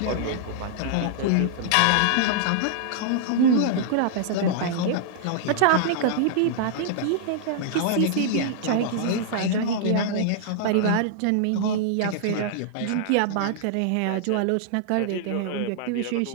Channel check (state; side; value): different; both; correlation -0.01